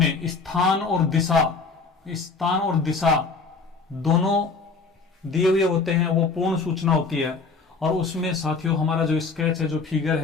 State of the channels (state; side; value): quieter; right; 4.4 dB